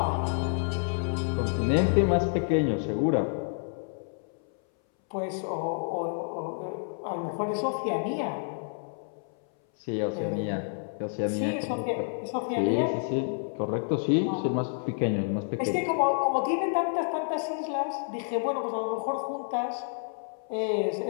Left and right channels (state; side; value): silent; right; 59 dB below the other